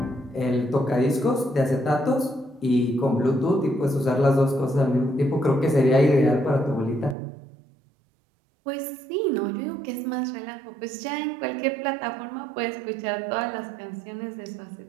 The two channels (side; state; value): left; drops out; at 7.2 s